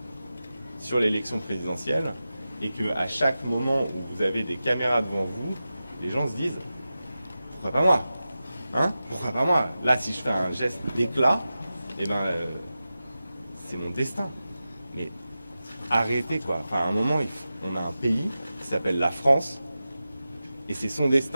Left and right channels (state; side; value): inverted; both; correlation -0.94